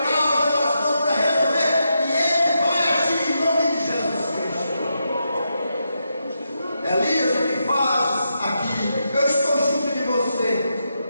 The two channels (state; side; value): inverted; both; correlation -0.84